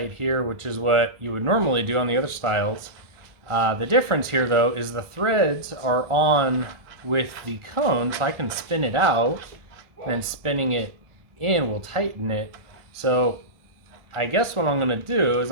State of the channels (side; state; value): left; late; 1.4 ms